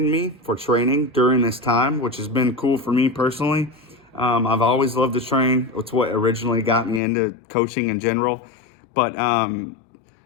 me for training during this time, which has been cool for me personally. I've always loved to train. It's what originally got me into coaching in general. But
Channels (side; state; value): right; drops out; at 7.0 s